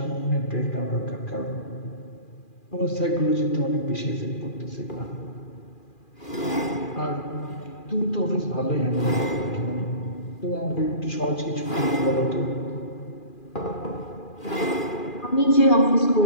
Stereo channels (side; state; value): right; late; 2.4 ms